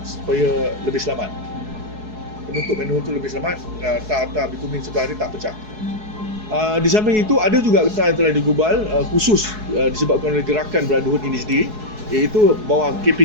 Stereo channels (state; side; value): late; left; 4.7 ms